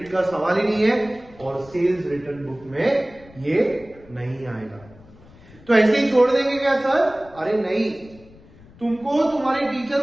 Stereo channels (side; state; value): left; noise; rumble, 24 dB below the sound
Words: का सवाल ही नहीं है और सेल्स रिटर्न बुक में ये नहीं आएगा। तो ऐसे ही छोड़ देंगे क्या सर? अरे नहीं, तुमको तुम्हारे